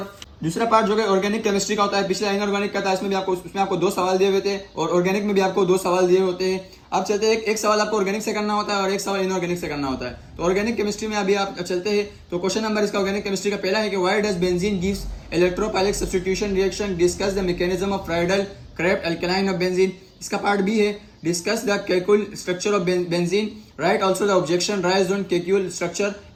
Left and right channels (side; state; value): both; identical; correlation 1.00